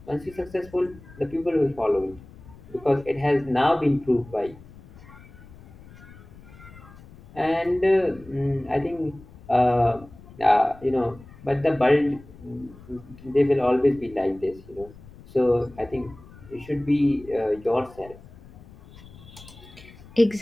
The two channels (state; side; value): noise; left; rumble, 20 dB below the sound